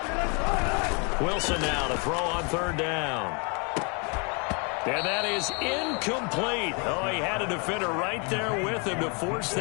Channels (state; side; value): quieter; right; 34.1 dB